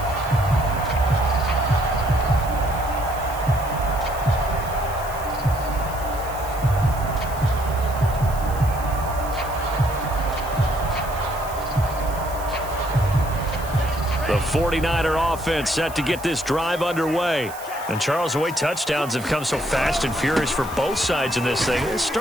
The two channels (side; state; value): right; noise; hiss, 16 dB below the sound